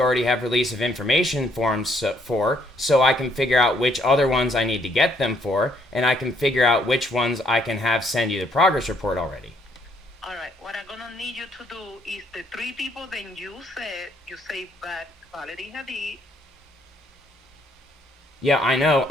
already have release of information forms for, so I can figure out which other ones I need to get them for, and I can figure out which ones I can have send you the progress report already. All right, what I'm going to need you to do is the three people that you say Valerie Hadid. Yeah, I know.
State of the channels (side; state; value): both; normal; correlation 0.69